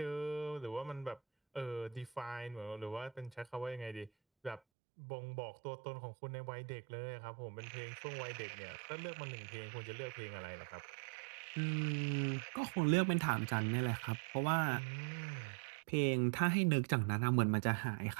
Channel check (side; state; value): left; drops out; at 4.6 s